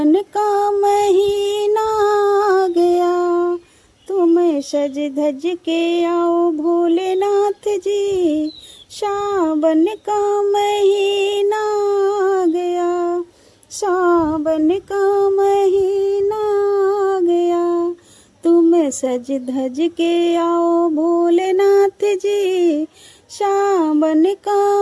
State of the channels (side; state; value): both; identical; correlation 1.00